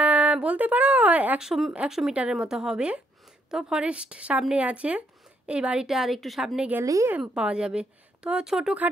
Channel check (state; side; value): normal; both; correlation 0.72